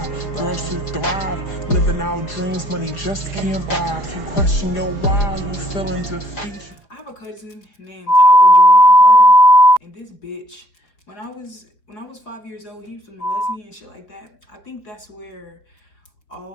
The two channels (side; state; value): right; late; 5.0 ms